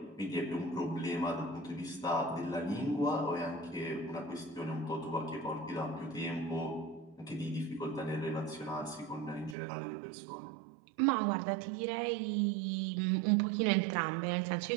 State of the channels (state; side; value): drops out; left; at 9.6 s